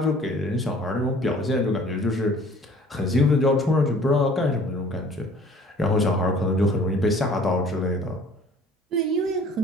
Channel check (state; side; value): normal; both; correlation 0.51